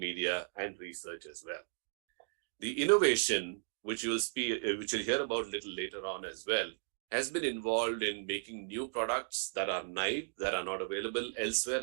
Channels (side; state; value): left; silent; digital silence